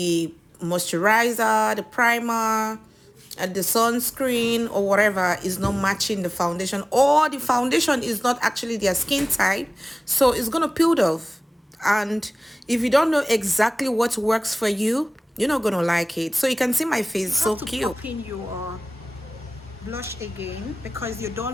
moisturizer, the primer, and the sunscreen or whatever is not matching the foundation, or the foundation is not actually their skin type, so it's gonna peel off. And if you don't know exactly what works for you, you're not gonna like it. So you can see my face, You so have to cute. pop in your blush again because you're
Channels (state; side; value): normal; both; correlation 0.98